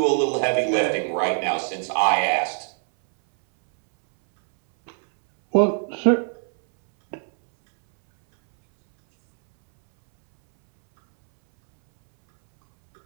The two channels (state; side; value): silent; left; 64 dB below the other